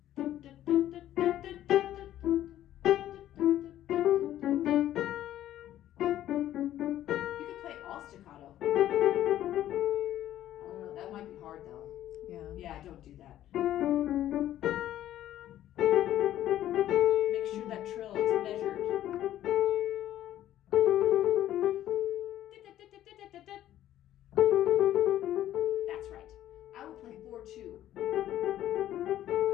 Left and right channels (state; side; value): quieter; right; 12.6 dB